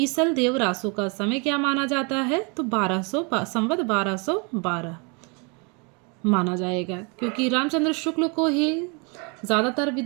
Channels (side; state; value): left; quieter; 32.8 dB